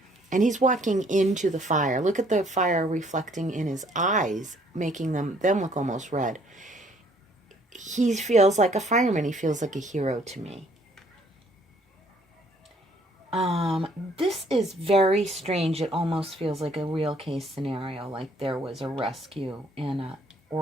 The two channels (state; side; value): normal; both; correlation 0.62